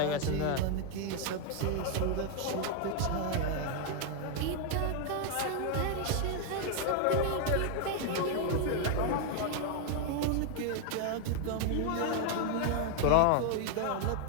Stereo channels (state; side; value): different; both; correlation 0.00